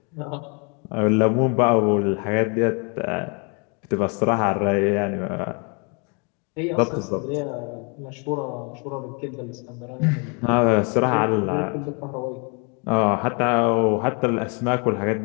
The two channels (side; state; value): right; quieter; 34.8 dB